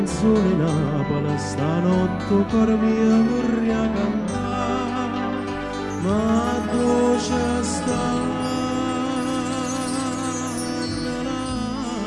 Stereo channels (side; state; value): both; identical; correlation 1.00